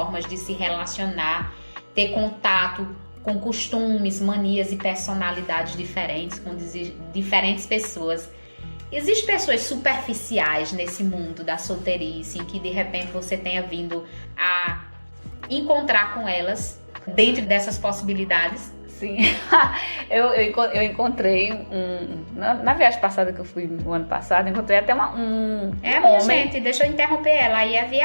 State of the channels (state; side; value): inverted; both; correlation -1.00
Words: de se relacionar, ter contato com costumes, manias e personalidades diferentes, com diferentes pessoas. Existem pessoas superficiais nesse mundo da solteirice, em que de repente você tenha vindo a encontrar com elas dentro dessas possibilidades? Sim, eu encontrei na viagem passada que eu fui no ano passado, encontrei até um minha homem. Gente, deixa eu interromper ela, aí é